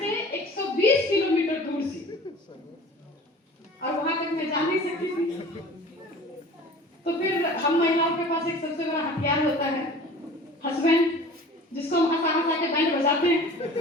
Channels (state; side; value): normal; both; correlation 0.43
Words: 120 किलोमीटर दूर से, और वहां तक मैं जा नहीं सकती थी। तो फिर हम महिलाओं के पास एक सबसे बड़ा हथियार होता है, हस्बैंड, जिसको हम हंसा हंसा के बैंड बजाते हैं।